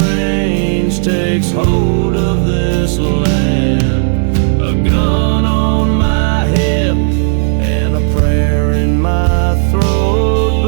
range takes hold of this land. A gun on my hip and a prayer in my throat,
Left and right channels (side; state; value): left; silent; digital silence